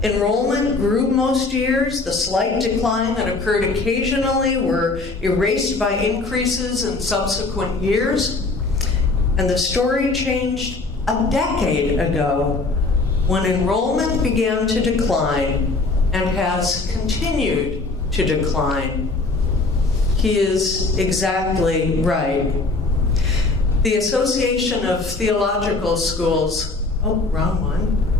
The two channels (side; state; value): right; quieter; 3.5 dB